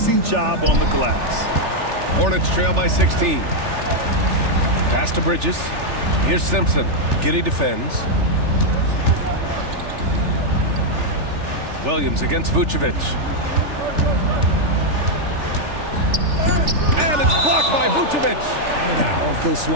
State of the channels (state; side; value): late; left; 3.4 ms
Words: job on the glass. Hornets trail by 16. Pass to Bridges. Here's Simpson. Giddey defends. Williams against Vucevic. And it's blocked by Vucevic. Powerful